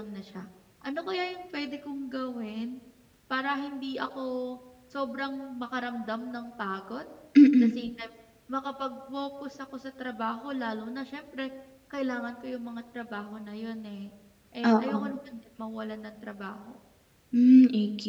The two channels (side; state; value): both; identical; correlation 1.00